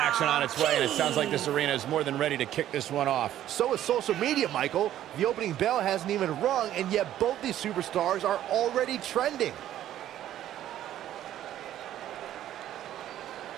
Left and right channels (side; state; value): left; quieter; 12.1 dB